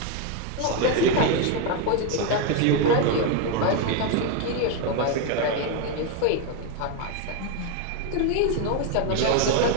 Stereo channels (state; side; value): different; both; correlation 0.02